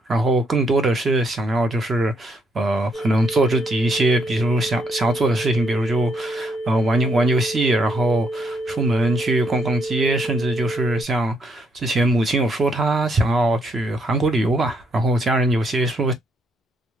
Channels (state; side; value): normal; both; correlation 0.73